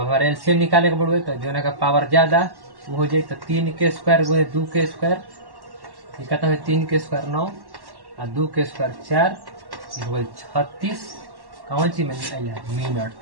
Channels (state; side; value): late; left; 1.1 ms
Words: एलसीएम निकाले के पड़े तो जो का पावर ज्यादा वो हो जाए, तो 3 के स्क्वायर गुने 2 के स्क्वायर कितना है, 3 के स्क्वायर 9 और 2 के स्क्वायर 4 हो गई 36। कौन सी मिनट,